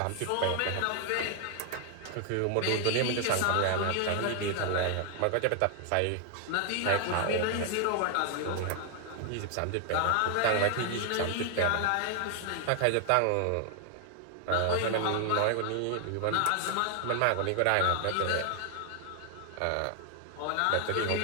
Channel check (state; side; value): different; both; correlation 0.00